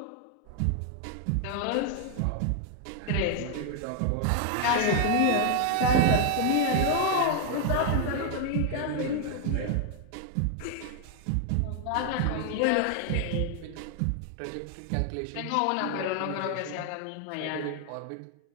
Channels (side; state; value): both; different; correlation 0.00